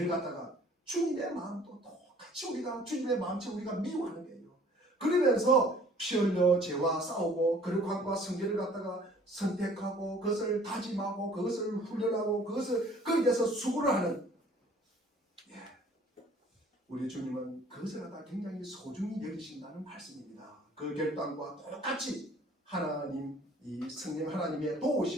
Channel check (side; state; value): both; normal; correlation 0.54